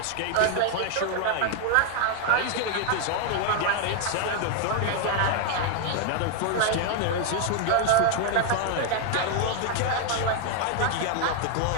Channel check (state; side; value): different; both; correlation 0.00